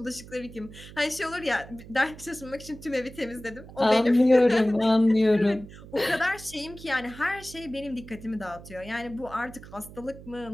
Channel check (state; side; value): noise; right; hum, 17 dB below the sound